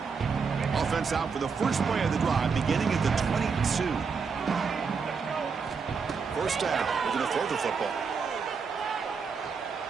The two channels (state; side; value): quieter; left; 5.5 dB